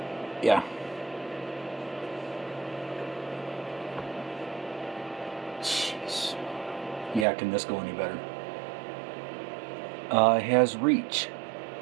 Yeah. Jeez. Yeah, can this go any better? It has Reach.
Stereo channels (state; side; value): drops out; left; at 7.2 s